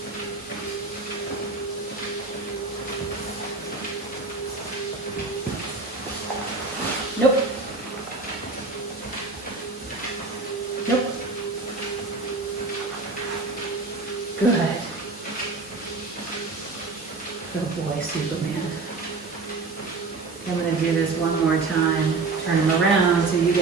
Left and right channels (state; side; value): quieter; left; 3.9 dB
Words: Nope. Nope. Good. Good boy, Superman. I'm going to do this one more time. Turn him around so you